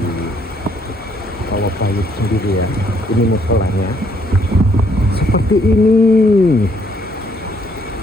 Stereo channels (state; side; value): normal; both; correlation 0.68